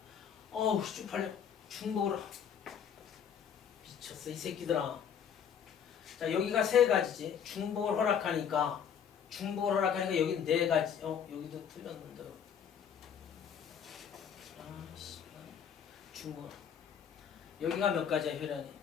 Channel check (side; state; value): right; quieter; 7.9 dB